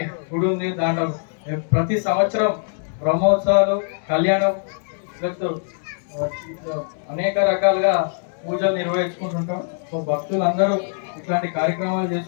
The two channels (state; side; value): silent; right; digital silence